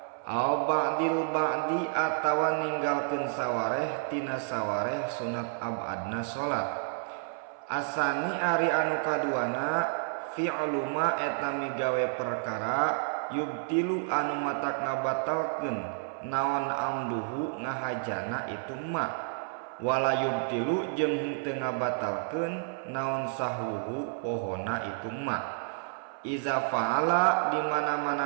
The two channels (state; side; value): silent; left; 55 dB below the other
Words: Au ba'dil ba'di atawa ninggalkeun sawareh tina sawareh sunat abadna salat. Asani ari anu kaduana fi'lu ma eta migawe perkara yubtilu anu matak ngabatalkeun naon amduhu ngahajana itu ma wala yubtilu jeung henteu ngabatalkeun naon sahwuhu pohona itu ma. Iza fa'ala di